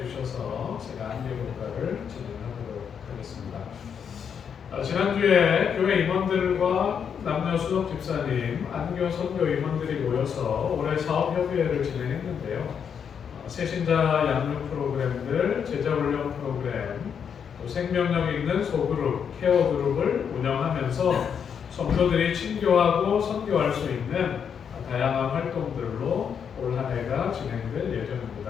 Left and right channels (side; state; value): right; quieter; 7.4 dB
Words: 제가 안교 교과를 진행하도록 하겠습니다. 지난주에 교회 임원들과 남녀 수석 집사님, 안교 선교 임원들이 모여서 올해 사업협의회를 진행했는데요. 새신자 양육 프로그램들, 제자훈련 프로그램, 또 생명력 있는 소그룹, 케어 그룹을 운영하면서 성도들이 친교하고 선교할 수 있는 다양한 활동들로 올 한 해가 진행될